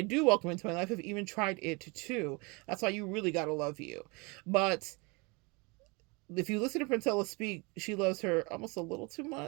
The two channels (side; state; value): left; quieter; 28.4 dB